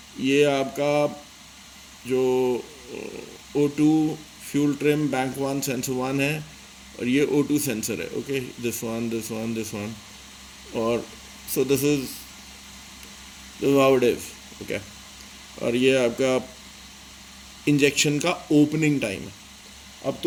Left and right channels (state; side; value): identical; both; correlation 1.00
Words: ये आपका जो O2 fuel trim bank one sensor one है, और ये O2 सेंसर है। Okay, this one this one this one, और so this is how it is. Okay, और ये आपका इंजेक्शन का ओपनिंग टाइम है। अब